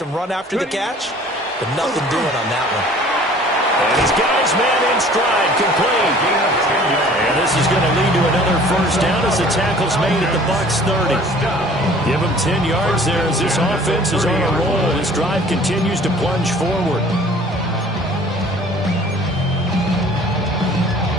run after the catch, but nothing doing on that one. And he's got his man in stride, complete. And this is going to lead to another first down as the tackle's made at the Bucs 30. Give him 10 yards there as this offense is on a roll. This drive continues to plunge forward.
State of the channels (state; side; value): normal; both; correlation 0.50